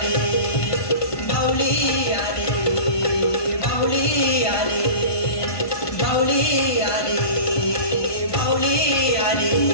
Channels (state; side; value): late; right; 1.2 ms